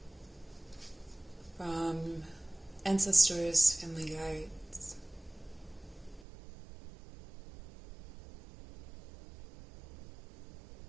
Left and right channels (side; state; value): left; drops out; at 6.2 s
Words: from ancestors, family guides.